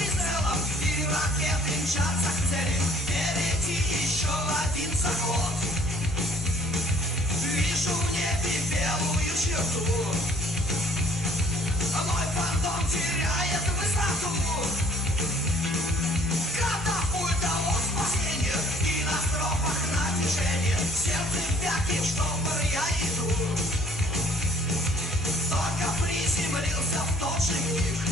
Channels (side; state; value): both; normal; correlation 0.57